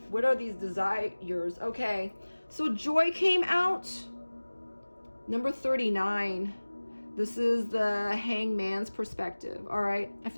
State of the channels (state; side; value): inverted; both; correlation -1.00